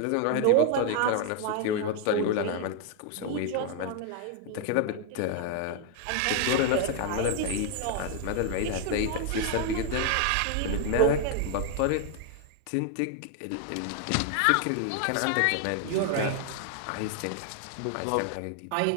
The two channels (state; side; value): different; both; correlation 0.00